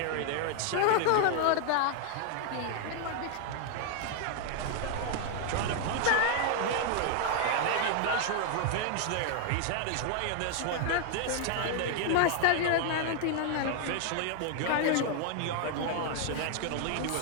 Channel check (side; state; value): both; different; correlation 0.00